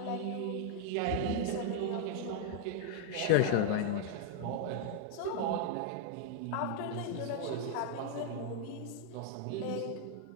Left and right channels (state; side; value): different; both; correlation 0.00